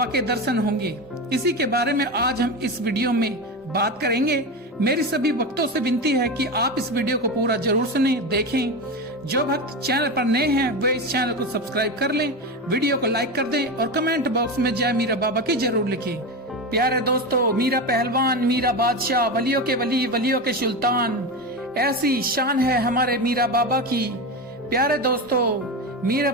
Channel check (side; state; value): both; normal; correlation 0.20